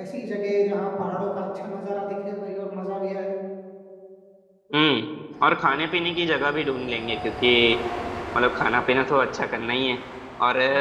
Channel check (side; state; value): both; identical; correlation 1.00